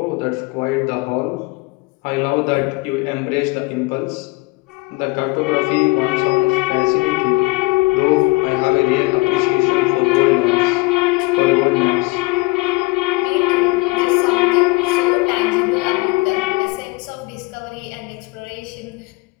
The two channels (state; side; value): quieter; right; 23.9 dB